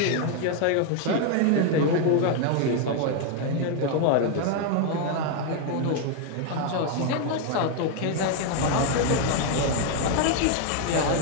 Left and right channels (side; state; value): both; different; correlation 0.01